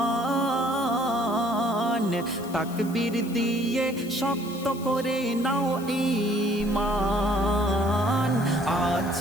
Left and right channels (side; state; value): left; noise; hiss, 18 dB below the sound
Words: তাকবীর দিয়ে শক্ত করে নাও ঈমান। আজ